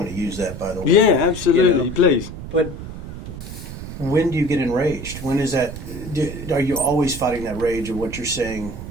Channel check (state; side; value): noise; right; rumble, 10 dB below the sound